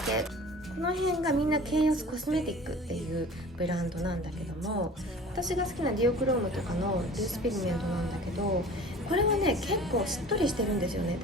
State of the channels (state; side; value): normal; both; correlation 0.43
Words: 系、この辺がみんなケイオスコスメティックっていうブランドなんだけども、私が好きなディオクロームとかのルースピグメントなんだけど、これはね結構しっとりしてるんですよね。